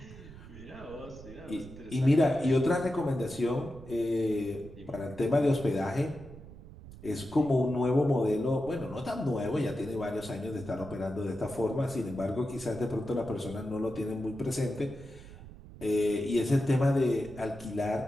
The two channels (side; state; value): right; noise; rumble, 16 dB below the sound